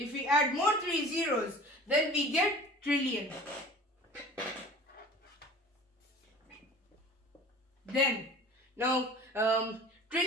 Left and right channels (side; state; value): both; normal; correlation 0.42